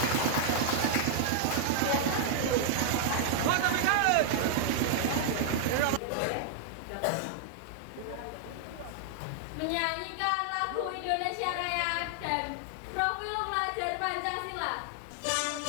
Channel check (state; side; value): different; both; correlation 0.00